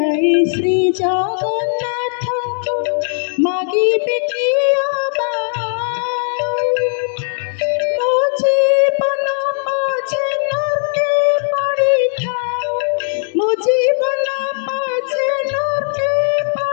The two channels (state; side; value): silent; right; 59 dB below the other